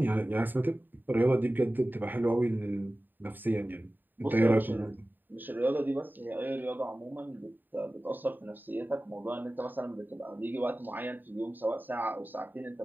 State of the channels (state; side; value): late; left; 0.091 ms